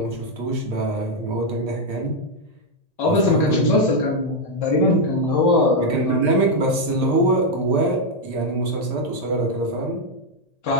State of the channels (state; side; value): late; right; 1.8 ms